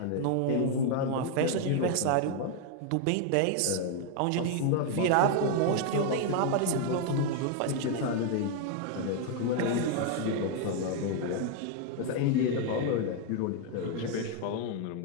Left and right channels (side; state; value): both; different; correlation 0.01